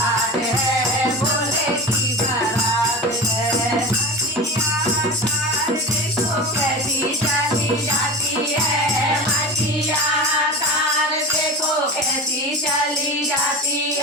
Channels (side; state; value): both; normal; correlation 0.30